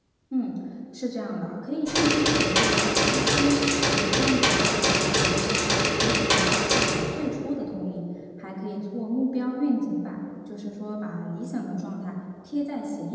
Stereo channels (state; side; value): identical; both; correlation 1.00